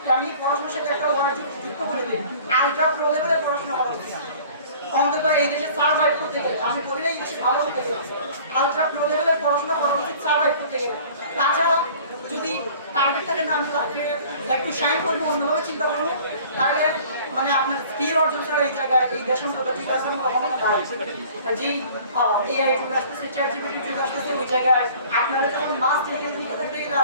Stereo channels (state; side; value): inverted; both; correlation -0.48